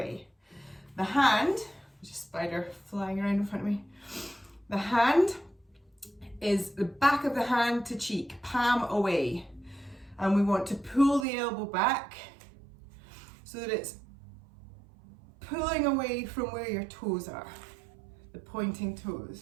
The hand, There's a spider flying around in front of me. The hand is the back of the hand to cheek, palm away. And we want to pull the elbow back so that it's pulling away from where your toes are, the pointing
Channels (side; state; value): left; drops out; at 11.2 s